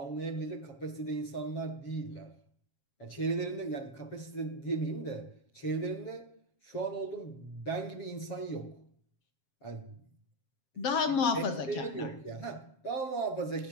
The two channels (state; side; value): late; right; 7.4 ms